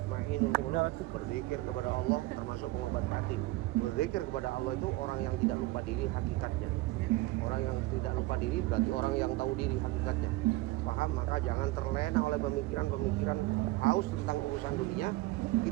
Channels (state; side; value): quieter; left; 19.5 dB